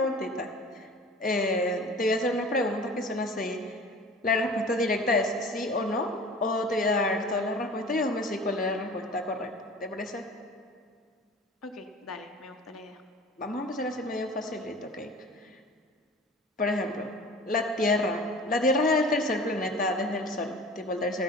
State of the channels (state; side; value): normal; both; correlation 0.42